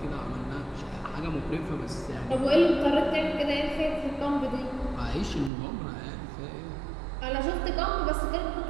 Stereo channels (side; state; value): left; drops out; at 5.5 s